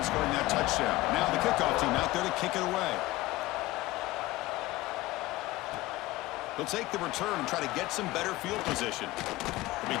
scoring that touchdown. Now the kickoff team out there to kick it away. They'll take the return and try to get some better field position. They'll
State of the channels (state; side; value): quieter; right; 18.5 dB